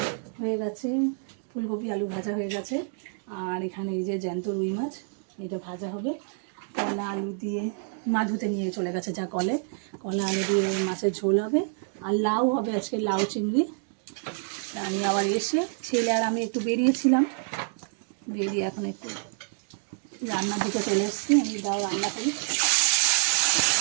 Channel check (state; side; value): silent; left; 60 dB below the other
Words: হয়ে গেছে, ফুলকপি আলু ভাজা হয়ে গেছে, আর এখানে এই যে জ্যান্ত রুই মাছ, এটা ভাজা হবে। কলা আলু দিয়ে মা ধুতে নিয়ে চলে গেছে যা কলে, কলা আলু দিয়ে মাছের ঝোল হবে, আর লাউ হবে আজকে, লাউ চিংড়ি। আমি আবার এসে ছেলে আর আমি একটু বেরিয়েছিলাম, বেরিয়ে এখন একটু রান্নার দিকে চলে এসেছি। আমি দাও রান্না করি,